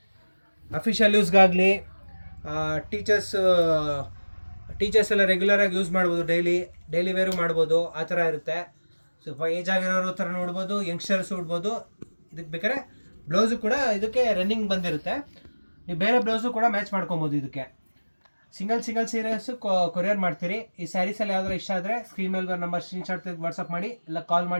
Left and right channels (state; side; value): inverted; both; correlation -1.00